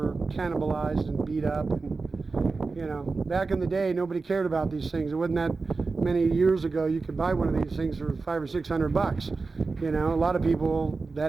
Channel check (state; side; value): quieter; left; 4.1 dB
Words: cannibalized and beat up. And, you know, back in the day, nobody cared about these things. It wasn't that many years ago you could buy one of these things for $500 or $600. You know, a lot of people